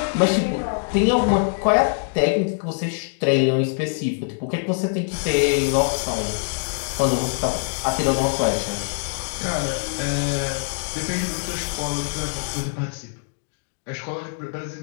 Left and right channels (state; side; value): silent; right; digital silence